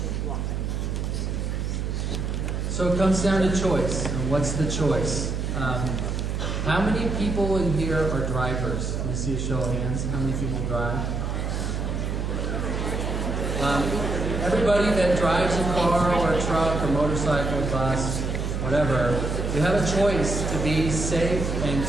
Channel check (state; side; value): noise; right; hum, 2 dB below the sound